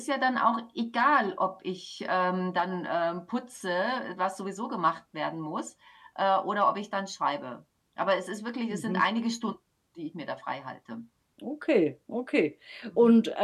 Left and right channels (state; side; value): identical; both; correlation 1.00